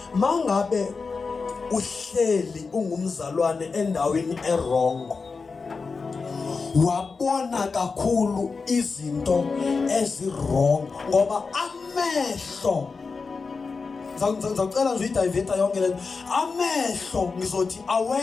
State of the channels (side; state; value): right; quieter; 4.6 dB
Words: mangabe uhleli ungumzalwane endaweni erongo wabona kakhulu izinto ezirong ngoba amehlo ngicela nje idiveta yonke lento amehlo ngizothi